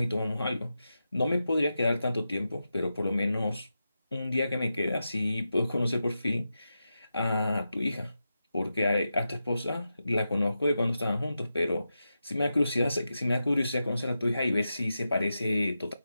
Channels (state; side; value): inverted; both; correlation -0.90